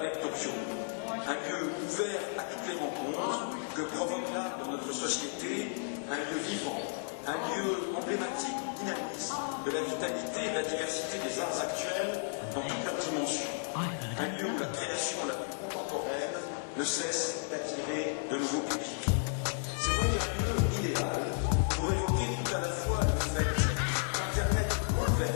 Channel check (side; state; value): right; silent; 56 dB below the other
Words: de Tokyo, un lieu ouvert à toutes les rencontres que provoque l'art dans notre société, un lieu vivant, un lieu emblématique du dynamisme, de la vitalité et de la diversité des arts actuels dans toutes leurs dimensions. Un lieu où la création la plus contemporaine ne cesse d'attirer de nouveaux publics. C'est donc un lieu idéal pour évoquer tout à la fois le fait qu'Internet